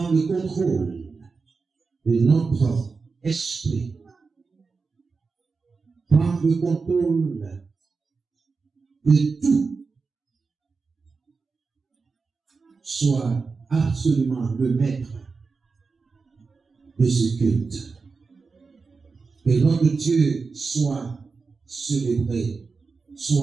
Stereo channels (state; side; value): quieter; left; 4.5 dB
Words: le contrôle de notre esprit. Prends le contrôle de tout. Sois absolument le maître de ce culte. Que notre Dieu soit célébré,